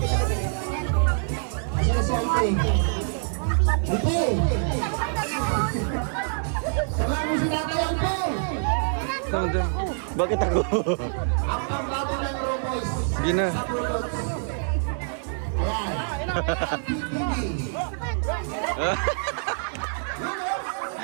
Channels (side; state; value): left; silent; digital silence